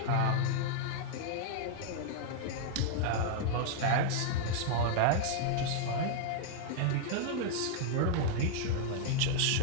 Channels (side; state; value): both; different; correlation 0.00